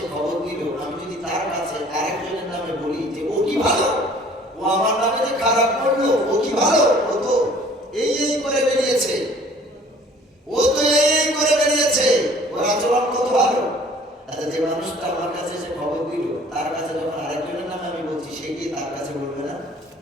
খবর দিল, আমি যদি তার কাছে আরেকজনের নামে বলি যে ও কি ভালো, ও আমার নামে যে খারাপ করলো, ও কি ভালো, ও তো এই করে বেরিয়েছে, ও তো এই করে বেরিয়েছে, ওর আচরণ কত ভালো। আচ্ছা, যে মানুষটা আমার কাছে এসে খবর দিল, তার কাছে যখন আরেকজনের নামে আমি বলছি, সে কি তার কাছে বলবে না?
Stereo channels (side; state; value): both; normal; correlation 0.53